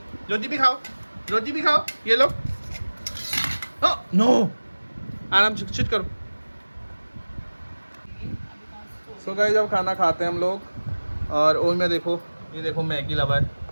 रोटी भी खाओ, रोटी भी खाओ, ये लो। नो, आराम से चिट करो। सो गाइस अब खाना खाते हैं हम लोग और ओमिया देखो, ये देखो मैगी लवर,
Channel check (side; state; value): both; inverted; correlation -1.00